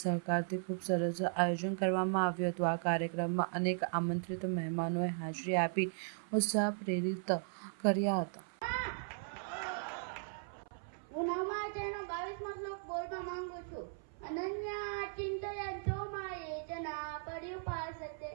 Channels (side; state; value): left; silent; 53 dB below the other